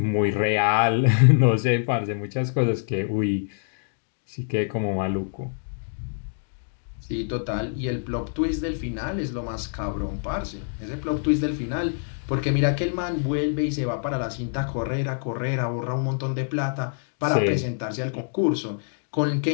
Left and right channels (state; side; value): silent; right; digital silence